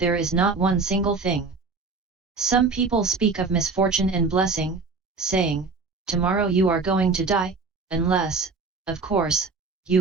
is not one single thing. Some people speak of misfortune and blessing, saying, tomorrow you are going to die, unless, of course,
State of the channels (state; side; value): quieter; left; 4.3 dB